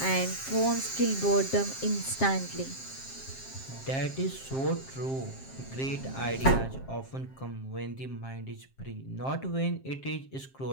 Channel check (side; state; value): right; late; 7.5 ms